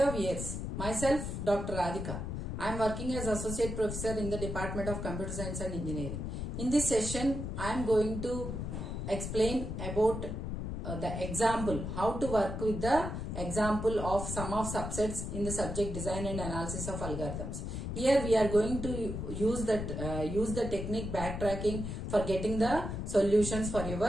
viewers, myself Dr. Radhika. I am working as Associate Professor in the Department of Computer Science and Engineering. In this session, I am going to explain about the example, how to work with the example of sum of subsets in the subject design and analysis of algorithms. Here we are going to use the technique backtracking for getting the solutions for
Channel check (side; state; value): left; noise; rumble, 4 dB below the sound